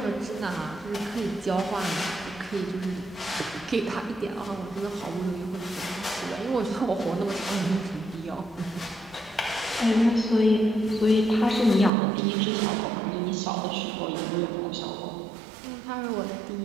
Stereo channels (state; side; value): drops out; left; at 11.9 s